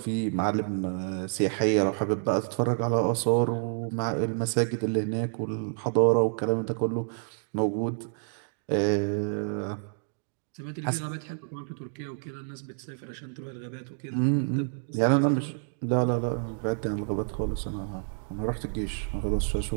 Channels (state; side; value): silent; left; digital silence